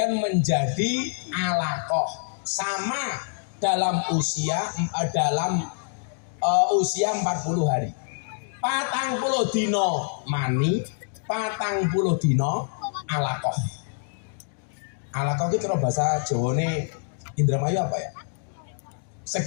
menjadi alaqah sama dalam usia 40 hari. 40 dina mani, 40 dina alaqah. Alaqah itu kalau bahasa Jawane Indramayu apa ya?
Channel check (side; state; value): right; silent; digital silence